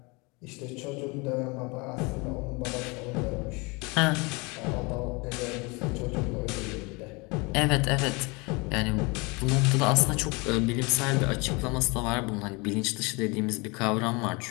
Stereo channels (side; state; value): right; quieter; 27.6 dB